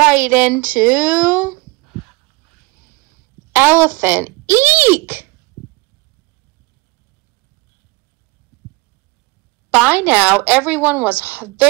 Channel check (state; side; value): quieter; left; 24.2 dB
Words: into Elephant. Eek! By now, everyone was